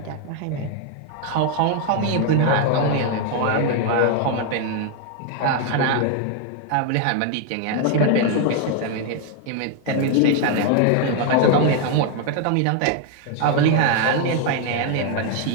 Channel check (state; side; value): different; both; correlation 0.00